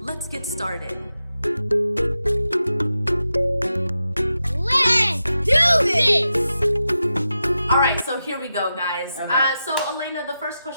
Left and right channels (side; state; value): both; inverted; correlation -0.90